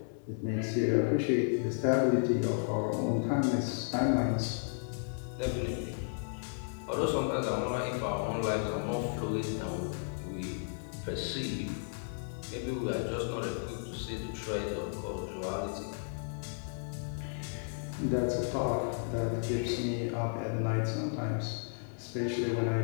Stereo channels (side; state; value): right; silent; digital silence